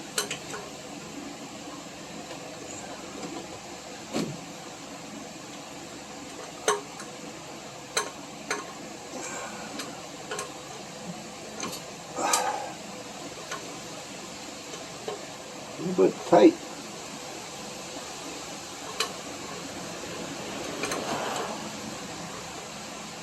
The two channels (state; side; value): identical; both; correlation 1.00